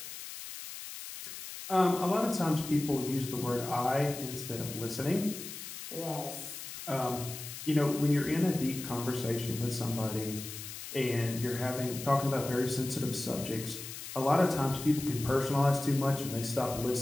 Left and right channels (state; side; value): noise; left; hiss, 10 dB below the sound